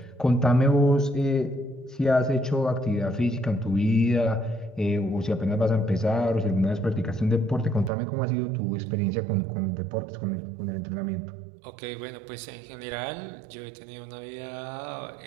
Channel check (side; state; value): left; drops out; at 7.9 s